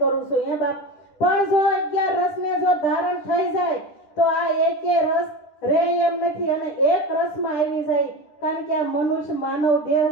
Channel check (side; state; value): right; late; 10 ms